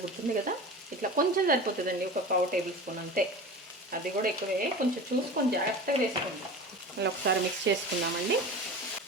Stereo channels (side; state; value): both; normal; correlation 0.33